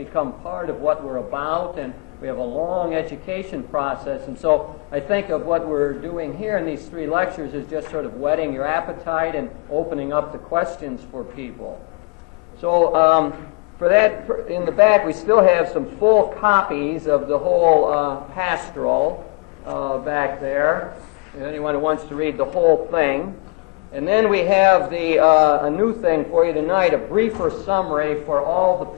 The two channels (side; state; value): right; quieter; 30.9 dB